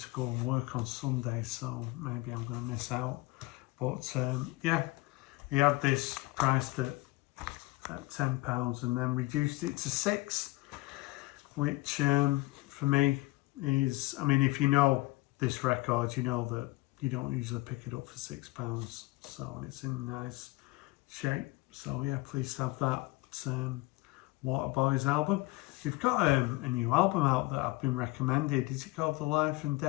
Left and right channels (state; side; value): quieter; right; 21.4 dB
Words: go and work on Sunday, so maybe I'm going to miss out. But yeah, he had this priced at £10 and then reduced it to £6, which for me is, I mean, if you know this record, you know that you don't usually pick it up for £6, so it's in nice shape. So yeah, pleased to have that Waterboys album. We've got a new album out that I've been recommended. Is it called The Life and